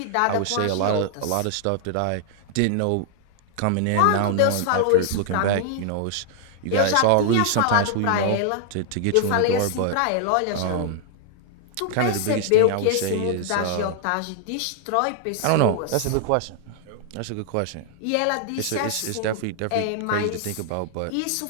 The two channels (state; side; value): different; both; correlation 0.00